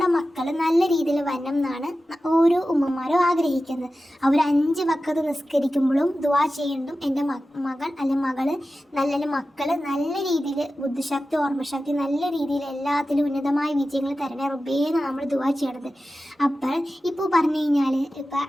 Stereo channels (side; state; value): both; normal; correlation 0.94